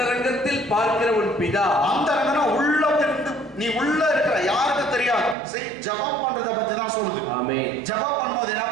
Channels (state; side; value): drops out; left; at 5.4 s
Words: பார்க்கிற உன் பிதா. அந்தரங்கனா உள்ள நீ உள்ள இருக்கிற யாருக்கு தெரியாது. ஜெபம் பண்றத பத்தி தான் சொல்லுது. ஆமென். ஜெபம் பண்ணும்போது என்ன